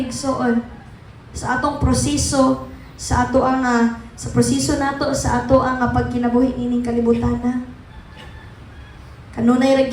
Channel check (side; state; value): both; identical; correlation 1.00